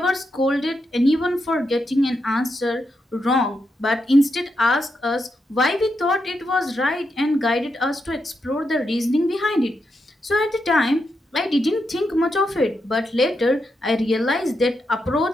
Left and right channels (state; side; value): normal; both; correlation 0.84